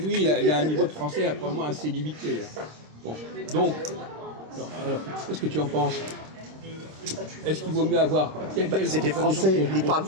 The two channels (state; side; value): late; left; 26 ms